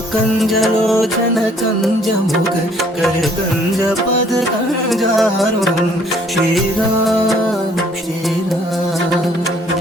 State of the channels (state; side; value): normal; both; correlation 0.61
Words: कञ्जमुख कर कञ्जपद कञ्जारुणम्। श्रीराम श्रीराम